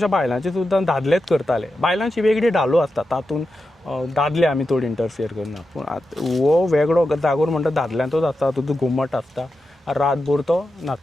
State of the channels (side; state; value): both; normal; correlation 0.89